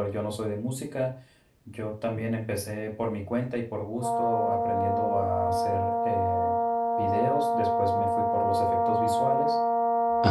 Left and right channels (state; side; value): identical; both; correlation 1.00